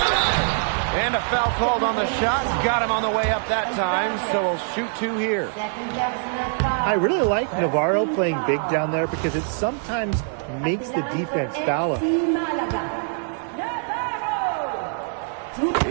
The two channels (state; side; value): silent; left; 63 dB below the other